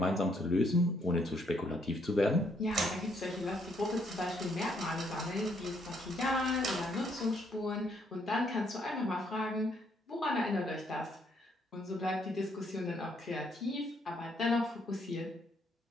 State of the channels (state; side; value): normal; both; correlation 0.70